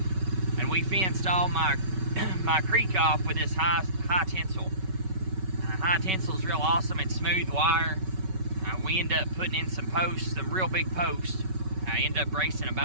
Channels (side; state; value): left; late; 5.3 ms